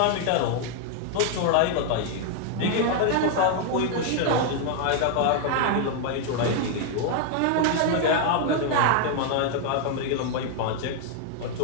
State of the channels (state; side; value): different; both; correlation 0.00